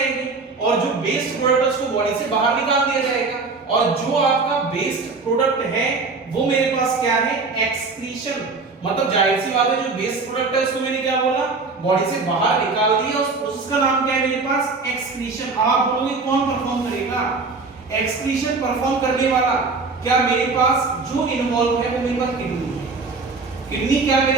और जो वेस्ट प्रोडक्ट है उसको बॉडी से बाहर निकाल दिया जाएगा, और जो आपका वेस्ट प्रोडक्ट है वो मेरे पास क्या है, एक्सक्रीशन। मतलब जाहिर सी बात है जो वेस्ट प्रोडक्ट है उसको मैंने क्या बोला, बॉडी से बाहर निकाल दिया। उस प्रोसेस का नाम क्या है मेरे पास, एक्सक्रीशन। आप बोलोगे कौन परफॉर्म करेगा, एक्सक्रीशन परफॉर्म करने वाला क्या मेरे पास जो इन्वॉल्व है वो मेरे पास किडनी है। किडनी क्या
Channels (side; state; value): left; quieter; 4.1 dB